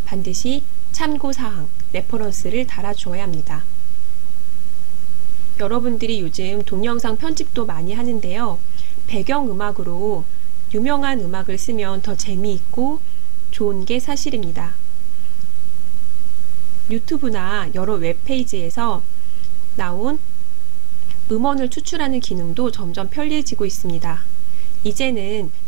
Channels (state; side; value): quieter; left; 18.6 dB